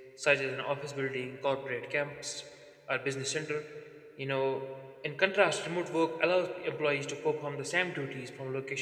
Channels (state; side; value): identical; both; correlation 1.00